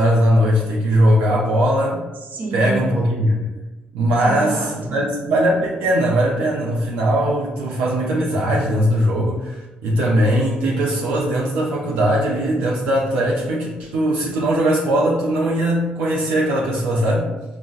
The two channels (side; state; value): both; normal; correlation 0.73